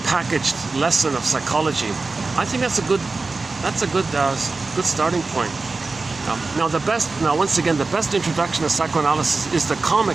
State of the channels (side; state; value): left; quieter; 3.8 dB